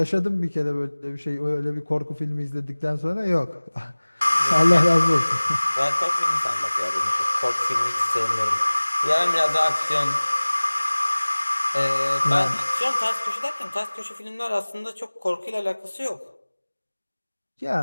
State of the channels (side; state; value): both; inverted; correlation -1.00